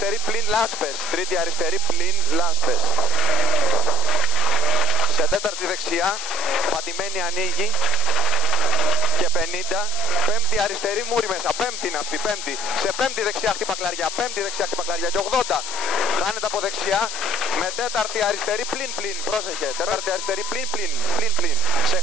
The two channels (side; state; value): left; noise; hiss, 6 dB below the sound